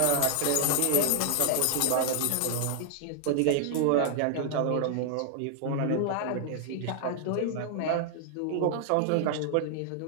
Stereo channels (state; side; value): different; both; correlation 0.00